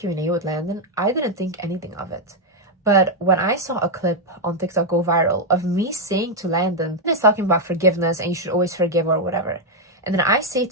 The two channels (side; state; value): both; normal; correlation 0.00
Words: with Landon, I didn't think anything of it. But when I saw a clip on TikTok go viral of me saying to Landon, he's talking about forgiveness and you should always forgive or whatever. And then I say